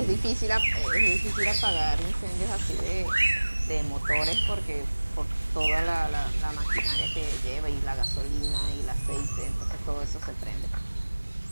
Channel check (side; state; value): both; inverted; correlation -1.00